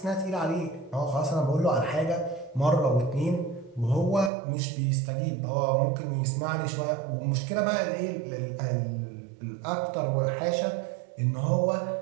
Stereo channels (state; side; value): drops out; left; at 4.3 s